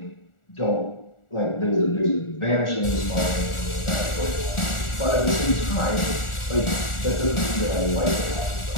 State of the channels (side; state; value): right; late; 1.4 ms